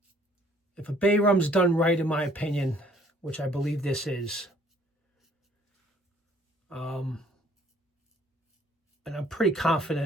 If a Bay Rum's done right, in my opinion, which I believe this is, and I'm pretty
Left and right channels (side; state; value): both; normal; correlation 0.60